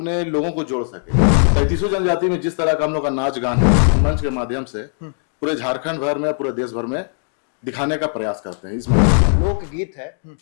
लोगों को जोड़ सके। 33 जनजाति में जिस तरह का हम लोग का नाच गान है, मंच के माध्यम से पूरे झारखंड भर में, पूरे देश भर में दिखाने का प्रयास करते हैं। इस लोकगीत है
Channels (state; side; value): silent; right; digital silence